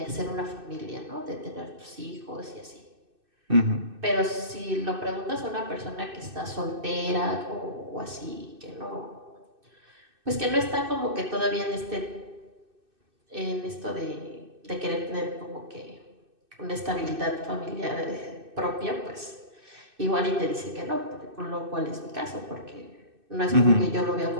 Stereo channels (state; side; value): late; left; 2.6 ms